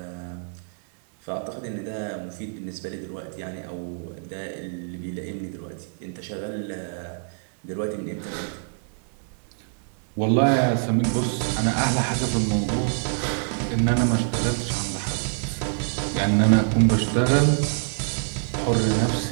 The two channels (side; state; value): left; silent; 61 dB below the other